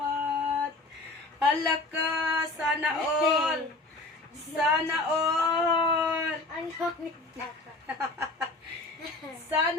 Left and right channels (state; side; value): quieter; right; 3.0 dB